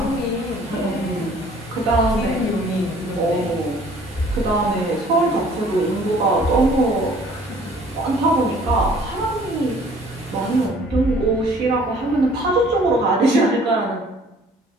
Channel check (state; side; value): normal; both; correlation 0.55